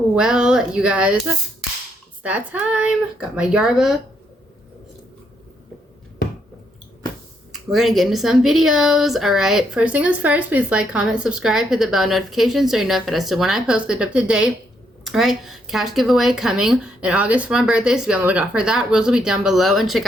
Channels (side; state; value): both; normal; correlation 0.75